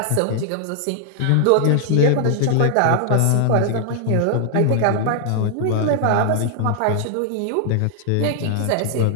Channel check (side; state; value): both; different; correlation 0.00